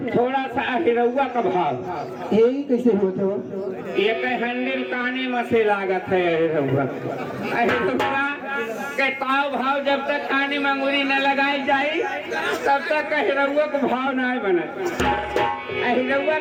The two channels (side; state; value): both; identical; correlation 1.00